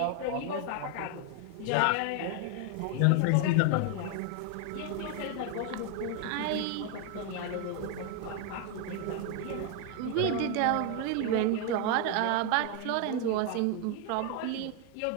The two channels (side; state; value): both; different; correlation 0.01